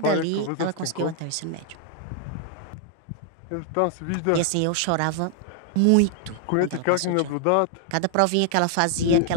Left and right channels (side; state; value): both; different; correlation 0.00